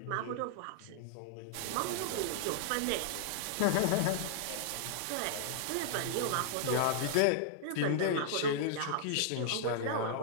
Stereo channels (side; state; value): both; different; correlation -0.01